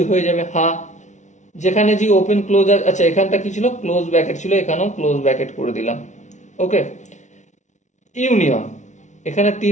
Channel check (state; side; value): late; right; 0.35 ms